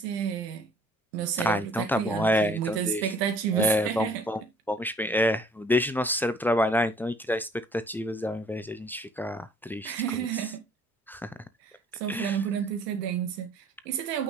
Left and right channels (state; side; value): normal; both; correlation 0.56